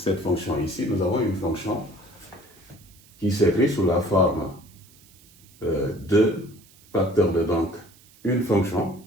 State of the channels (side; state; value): right; noise; hiss, 27 dB below the sound